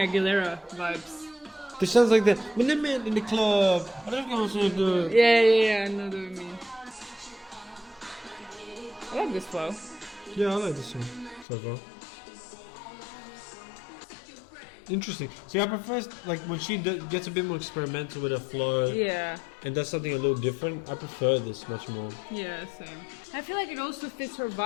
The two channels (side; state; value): right; drops out; at 11.5 s